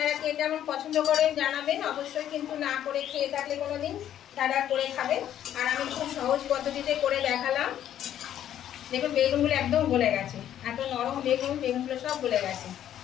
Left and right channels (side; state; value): right; quieter; 10.9 dB